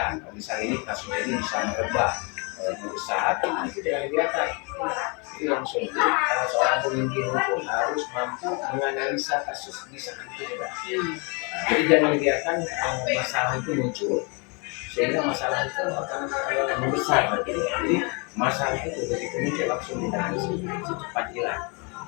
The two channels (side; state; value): right; quieter; 32.3 dB